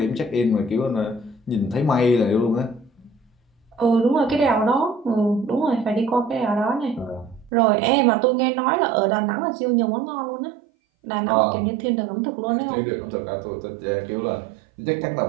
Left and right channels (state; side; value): drops out; left; at 7.5 s